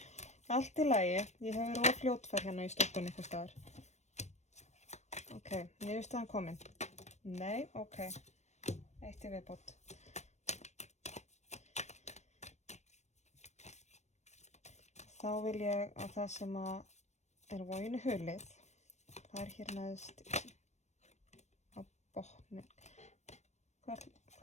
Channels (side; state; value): right; late; 0.33 ms